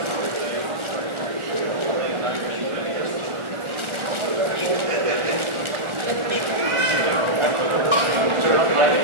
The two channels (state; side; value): late; left; 1.4 ms